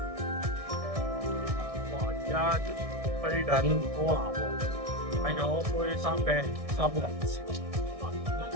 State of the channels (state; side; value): late; left; 1.6 ms